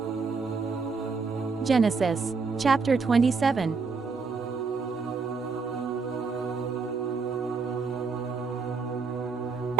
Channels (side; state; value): left; quieter; 4.8 dB